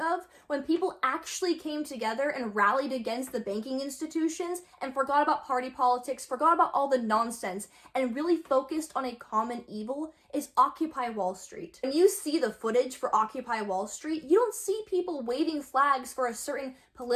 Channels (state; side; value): identical; both; correlation 1.00